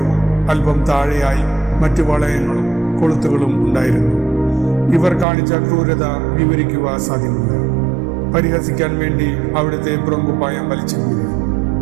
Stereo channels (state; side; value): drops out; left; at 5.2 s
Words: അല്പം താഴെയായി മറ്റു വളയങ്ങളും കൊളുത്തുകളും ഉണ്ടായിരുന്നു. ഇവർ കാണിച്ച ക്രൂരത വിവരിക്കുക സാധ്യമല്ല. പരിഹസിക്കാൻ വേണ്ടി അവിടുത്തെ പുറംകുപ്പായം വലിച്ചെങ്കിൽ